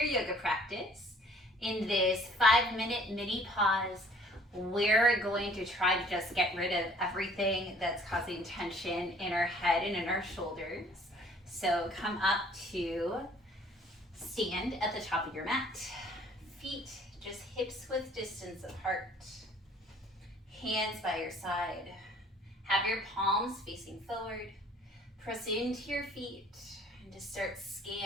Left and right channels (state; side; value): normal; both; correlation 0.56